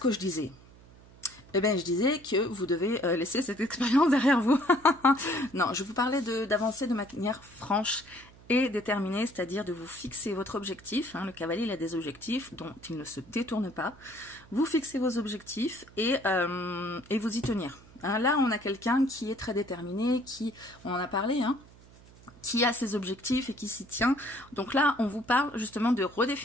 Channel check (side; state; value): right; noise; hum, 23 dB below the sound